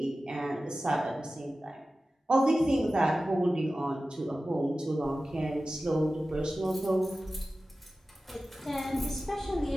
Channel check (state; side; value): normal; both; correlation 0.95